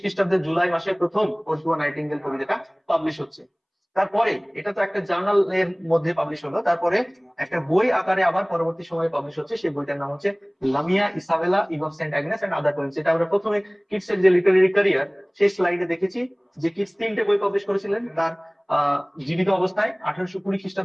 খ্রিস্টাব্দের জুলাই মাসে প্রথম ওড টু আ নাইটিঙ্গেল কবিতাটা পাবলিশ হচ্ছে। তারপরে এটা তো একটা জার্নালের মধ্যে পাবলিশ হলো, তারপরে একটা বই আকারে আবার পরবর্তী সময়ে পাবলিশ হচ্ছে। সেই বইটার নাম হচ্ছে Lamia Isabella Eve of Saint Agnes and other poems. এটা আমরা প্রথমে কিটসের যে লিটারেরি ক্যারিয়ার, সেই স্লাইডে দেখেছি যে কিটস 3টে বই পাবলিশ করেছিলেন তার জীবিত অবস্থায়। 1820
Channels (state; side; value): identical; both; correlation 1.00